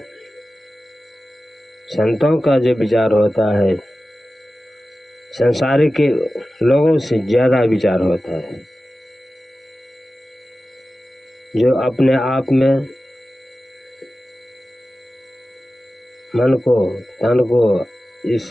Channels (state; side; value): normal; both; correlation 0.95